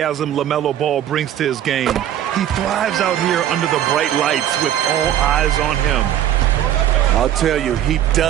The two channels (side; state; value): left; quieter; 11.1 dB